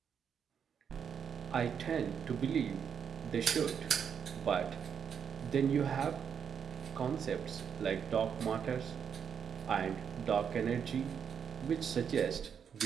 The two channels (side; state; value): left; quieter; 7.4 dB